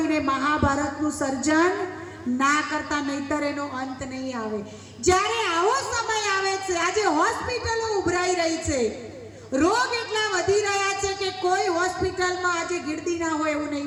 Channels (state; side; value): identical; both; correlation 1.00